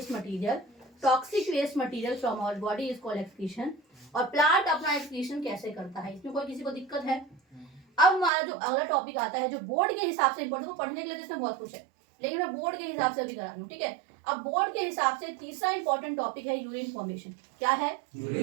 material, toxic waste material from our body is called excretion. और प्लांट अपना एक्सक्रीशन कैसे करता है, इसमें कोई किसी को दिक्कत है। अब हमारा जो अगला टॉपिक आता है, जो बोर्ड के हिसाब से इंपॉर्टेंट, पढ़ने के लिए इसमें बहुत कुछ है, लेकिन मैं बोर्ड के हिसाब से अभी करा रही हूँ, ठीक है। अब बोर्ड के हिसाब से तीसरा इंपॉर्टेंट टॉपिक है यूरिन फॉर्मेशन। क्या है,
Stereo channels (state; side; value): drops out; left; at 8.3 s